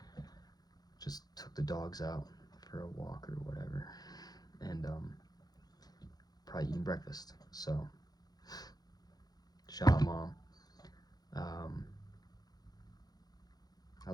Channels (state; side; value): late; right; 0.19 ms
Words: just took the dogs out for a walk or whatever, and probably eating breakfast. So shout out, Mom. um, I